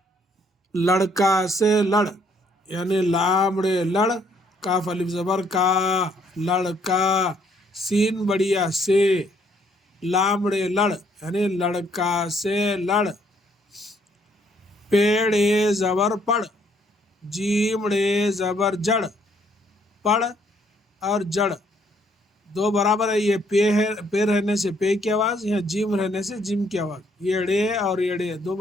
لڑکا سے لڑ یعنی لامڑے لڑ، کاف الف زبر کا، لڑکا، سین بڑیا سے، لامڑے لڑ یعنی لڑکا سے لڑ، پیڑے زبر پڑ، جیمڑے زبر جڑ، پڑ اور جڑ دو برابر ہے۔ یہ پے رہنے سے پے کی آواز، یہاں جیم رہنے سے جیم کی آواز، یڑے اور یڑے دو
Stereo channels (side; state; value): both; normal; correlation 0.67